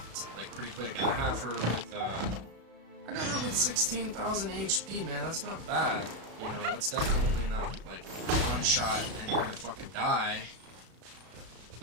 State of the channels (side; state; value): left; late; 34 ms